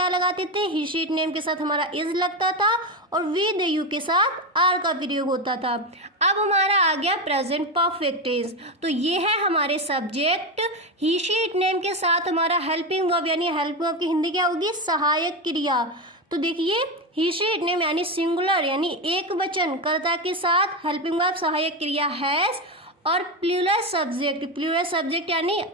लगाते थे, ही, शी, इट, नेम के साथ हमारा इज लगता था और वी, दे, यू के साथ आर का प्रयोग होता था। अब हमारा आ गया प्रेजेंट परफेक्ट टेंस। तो ये है हमारे subject, he, she, it, name के साथ हमारा हेल्पिंग वर्ब, यानी हेल्पिंग वर्ब की हिंदी क्या होगी, सहायक क्रिया। तो देखिए ही, शी, इट, नेम यानी सिंगुलर यानी एक वचन कर्ता के साथ हेल्पिंग वर्ब सहायक क्रिया हैज, और प्लूरल सब्जेक्ट यानी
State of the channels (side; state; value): both; normal; correlation 0.15